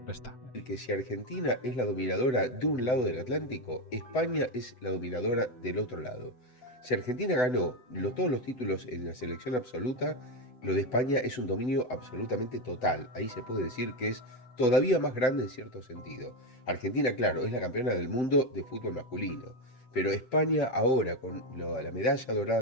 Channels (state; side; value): late; right; 7.6 ms